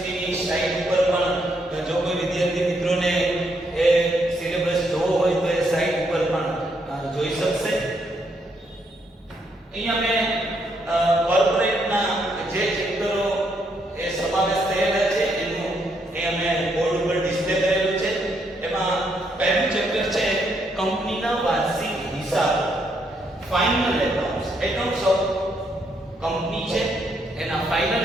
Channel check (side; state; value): both; normal; correlation 0.75